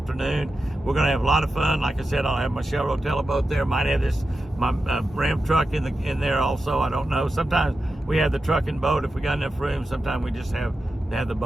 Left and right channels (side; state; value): both; normal; correlation 0.90